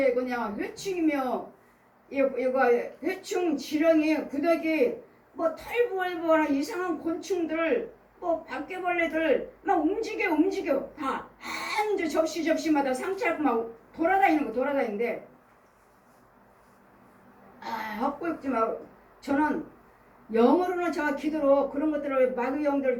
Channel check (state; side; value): identical; both; correlation 1.00